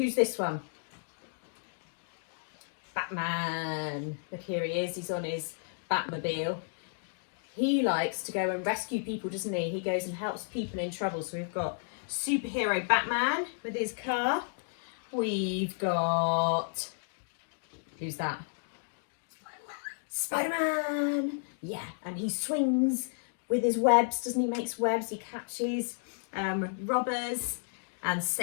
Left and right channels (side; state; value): right; silent; digital silence